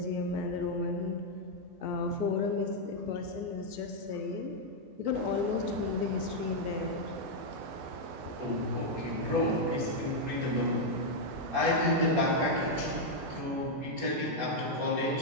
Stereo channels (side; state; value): left; late; 14 ms